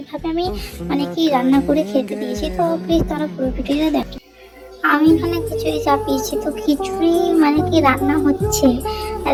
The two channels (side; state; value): both; identical; correlation 1.00